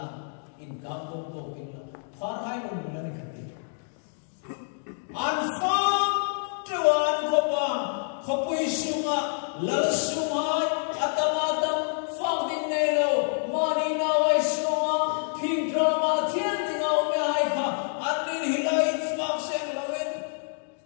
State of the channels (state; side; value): silent; right; digital silence